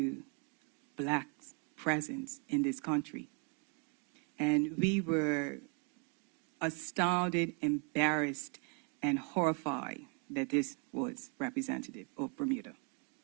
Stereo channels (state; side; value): quieter; left; 37.3 dB